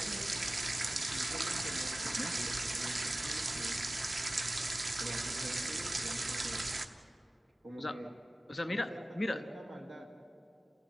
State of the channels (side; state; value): both; normal; correlation 0.97